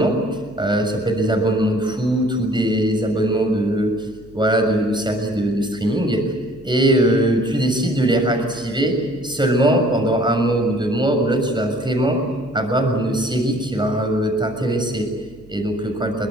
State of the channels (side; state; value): right; noise; hum, 24 dB below the sound